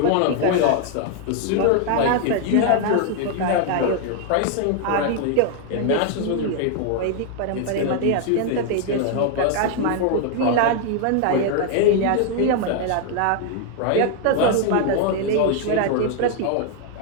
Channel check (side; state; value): both; different; correlation 0.00